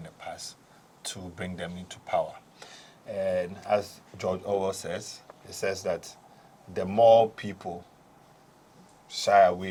the past to bring them into power. And as George Orwell says, he says that the more people shy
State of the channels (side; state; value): both; identical; correlation 1.00